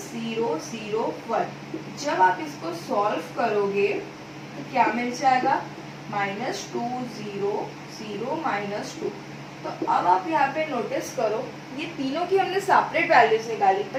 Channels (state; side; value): identical; both; correlation 1.00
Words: 0 0 1। जब आप इसको सॉल्व करोगे तो क्या मिल जाएगा माइनस 2 0 0 माइनस 2। तो अब आप यहाँ पे नोटिस करो ये तीनों की हमने सेपरेट वैल्यूज निकाली